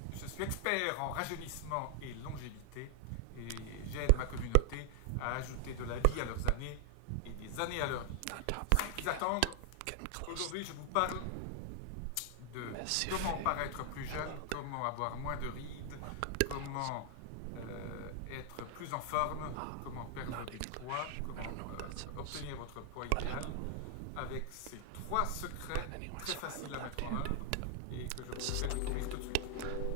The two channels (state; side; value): different; both; correlation 0.00